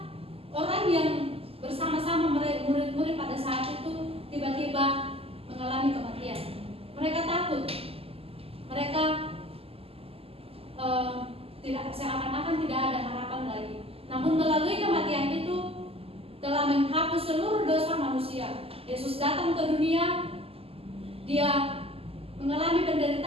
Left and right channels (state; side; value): late; left; 0.28 ms